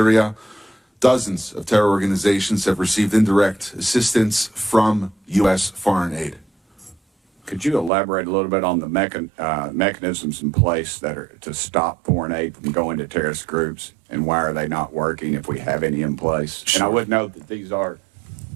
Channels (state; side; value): drops out; left; at 7.9 s